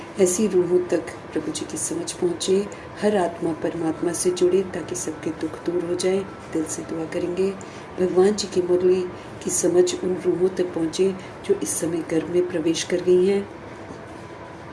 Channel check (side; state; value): both; identical; correlation 1.00